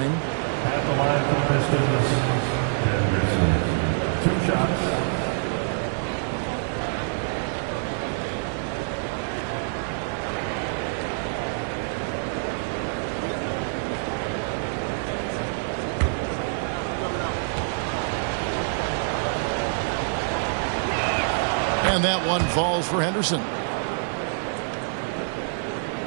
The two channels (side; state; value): left; silent; digital silence